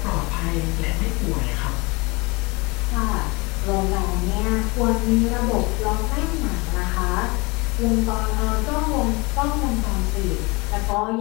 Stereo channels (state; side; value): quieter; right; 26.0 dB